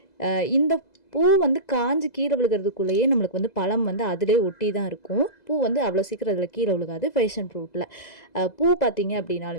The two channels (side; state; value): right; late; 2.0 ms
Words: இந்த பூ வந்து காஞ்சி கீழே விழுகிறதுக்குள்ளேயே நம்மளுக்கு வந்து பழம் வந்து அதிலே ஒட்டி தான் இருக்கும். பூ வந்து அவ்வளோ சீக்கிரம் அதில் கீழே விழுகாது. பேஷன் ஃப்ரூட்டில் பூ பார்த்திங்க